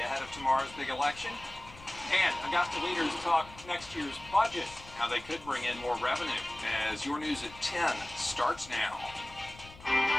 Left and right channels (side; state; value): left; noise; rumble, 19 dB below the sound